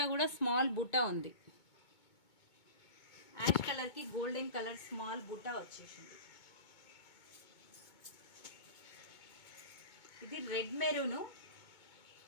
కూడా స్మాల్ బుట్ట ఉంది. యాష్ కలర్ కి గోల్డెన్ కలర్ స్మాల్ బుట్ట వచ్చేసింది. ఇది రెడ్ మెరూన్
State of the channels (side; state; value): right; late; 2.2 ms